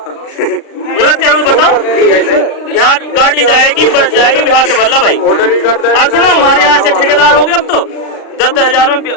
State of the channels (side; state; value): right; late; 36 ms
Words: गलत क्या हूँ बताओ? बिहार गाड़ी जाएगी, बस जाएगी, बिहार से भर लो भाई। और सुनो, हमारे यहाँ से ठेकेदार हो गए अब तो 10,000 में